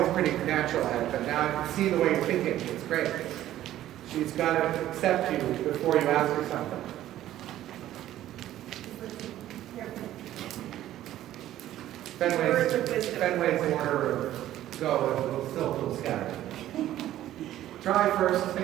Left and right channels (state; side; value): quieter; left; 13.2 dB